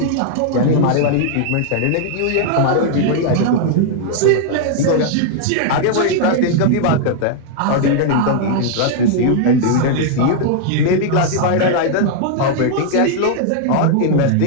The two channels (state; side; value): different; both; correlation 0.00